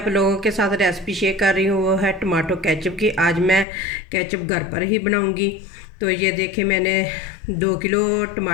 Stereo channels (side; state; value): right; drops out; at 3.7 s